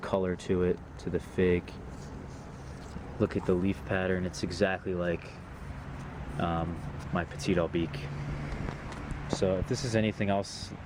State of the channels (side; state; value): both; identical; correlation 1.00